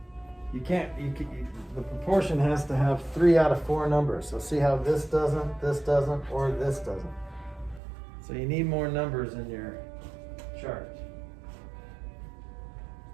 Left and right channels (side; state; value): left; drops out; at 7.8 s